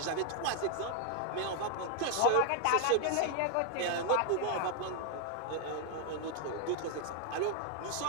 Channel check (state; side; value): different; both; correlation 0.00